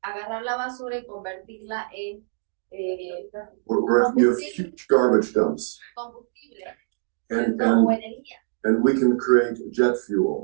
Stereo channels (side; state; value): left; silent; digital silence